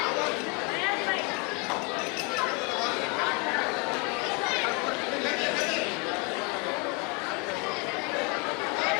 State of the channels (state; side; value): quieter; right; 31.9 dB